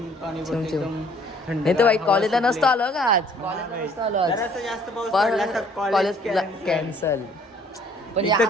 पडतं चिमचिम. एकदम थंड. नाही तर भाई कॉलेजला नसतो आलो का आज. कॉलेजला नसतो आलो आज. जरासा जास्त पाऊस पडला तर कॉलेज cancel. कॅन्सल. पण इथं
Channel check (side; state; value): both; normal; correlation 0.59